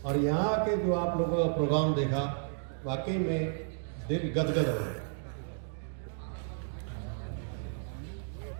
और यहाँ के जो आप लोगों का प्रोग्राम देखा, वाकई में दिल गदगद हो गया।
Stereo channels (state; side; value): silent; left; digital silence